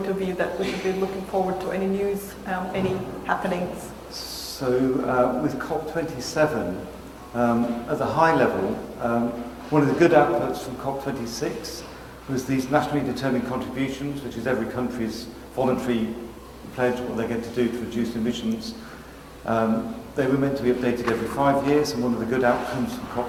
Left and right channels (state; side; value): identical; both; correlation 1.00